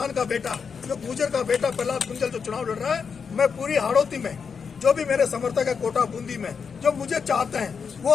का बेटा, जो गुर्जर का बेटा प्रहलाद गुंजल जो चुनाव लड़ रहा है, मैं पूरी हाड़ौती में जो भी मेरे समर्थक है, कोटा बूंदी में जो मुझे चाहते हैं, वो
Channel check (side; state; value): right; quieter; 6.0 dB